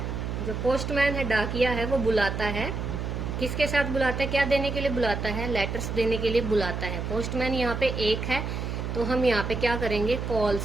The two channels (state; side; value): noise; right; hum, 4 dB below the sound